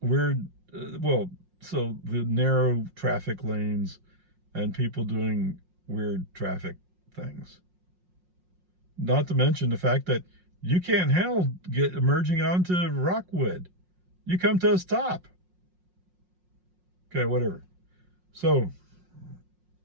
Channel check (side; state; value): left; late; 5.5 ms